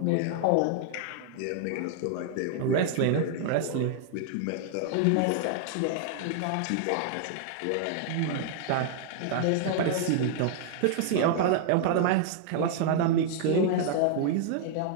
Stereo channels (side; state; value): both; different; correlation 0.00